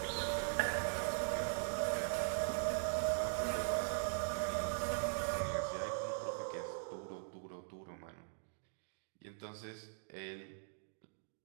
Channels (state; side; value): silent; left; digital silence